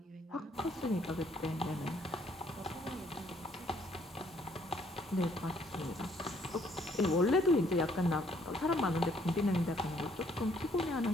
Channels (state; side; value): normal; both; correlation 0.65